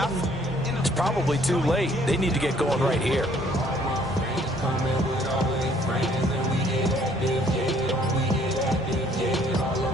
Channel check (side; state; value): both; normal; correlation 0.61